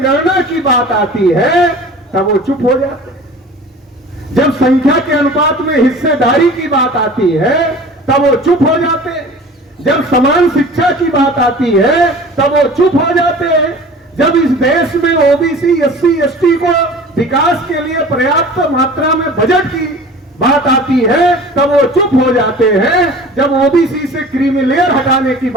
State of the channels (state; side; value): normal; both; correlation 0.42